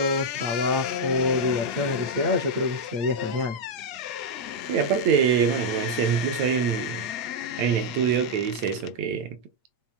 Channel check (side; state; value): left; late; 8.7 ms